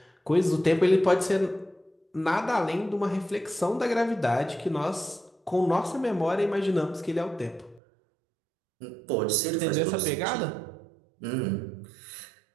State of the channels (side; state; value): left; drops out; at 7.8 s